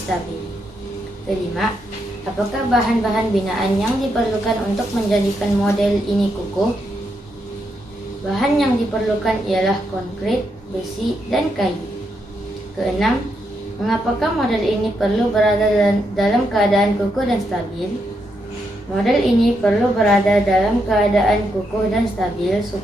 Kelima, apakah bahan-bahan binaan yang diperlukan untuk menjadikan model ini kukuh? Bahan yang diperlukan ialah konkrit, besi, dan kayu. Keenam, mengapakah model ini perlu berada dalam keadaan kukuh dan stabil? Model ini perlu berada dalam keadaan kukuh dan stabil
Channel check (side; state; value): both; normal; correlation 0.81